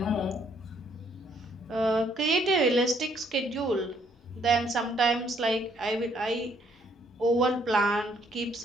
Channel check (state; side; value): normal; both; correlation 0.67